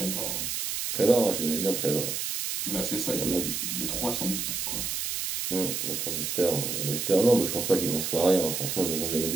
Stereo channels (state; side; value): noise; right; hiss, 2 dB below the sound